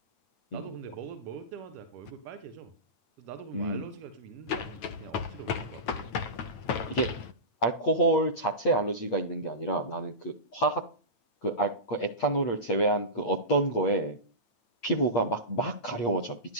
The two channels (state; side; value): late; right; 9.1 ms